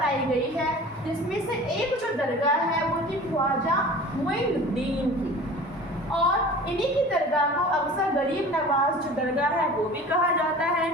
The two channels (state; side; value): normal; both; correlation 0.41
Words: गई है, जिसमें से एक जो दरगाह है वो थी ख्वाजा मोइनुद्दीन की। और इन्हीं की दरगाह को अक्सर गरीब नवाज जो दरगाह है वो भी कहा जाता है।